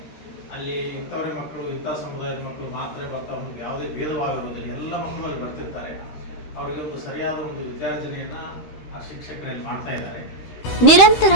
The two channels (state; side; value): late; right; 13 ms